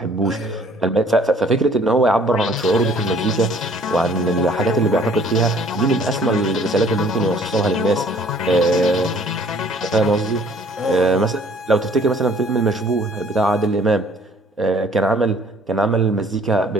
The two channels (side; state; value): both; normal; correlation 0.56